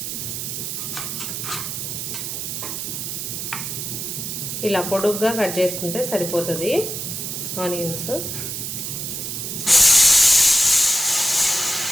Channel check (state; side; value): noise; right; hiss, 4 dB below the sound